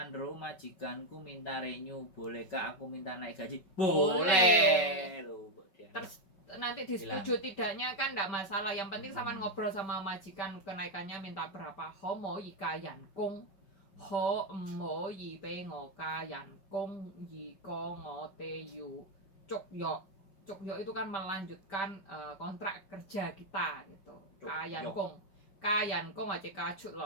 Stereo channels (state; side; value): late; right; 5.3 ms